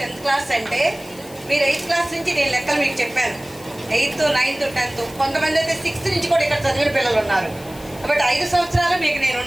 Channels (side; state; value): left; noise; hiss, 20 dB below the sound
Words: క్లాస్ అంటే మీరు 8th క్లాస్ నుంచి నేను లెక్కలు మీకు చెప్పాను. 8th, 9th, 10th, కొంతమంది అయితే 6th నుంచి కూడా ఇక్కడ చదివిన పిల్లలు ఉన్నారు. కాబట్టి 5 సంవత్సరాలు మీకు నేను